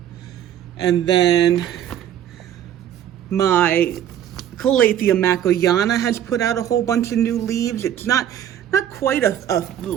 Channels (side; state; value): left; quieter; 10.5 dB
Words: And then my Calathea macoyana has put out a whole bunch of new leaves. It's not quite a